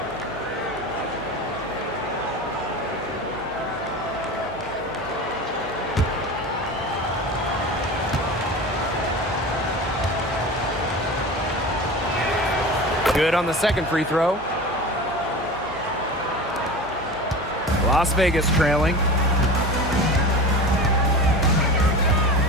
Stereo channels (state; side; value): noise; right; hum, 18 dB below the sound